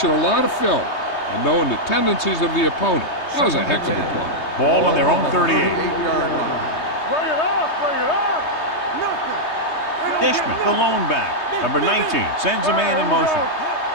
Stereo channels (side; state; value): right; late; 3.2 ms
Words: a lot of film and knowing the tendencies of the opponent. That was a heck of a play. Ball on their own 38. 38-yard line. Bring it up, bring it up. Nothing. Dishman, the lone back. Number 19 sends a man in motion.